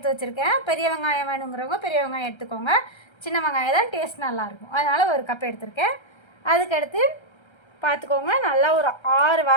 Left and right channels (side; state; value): right; late; 1.3 ms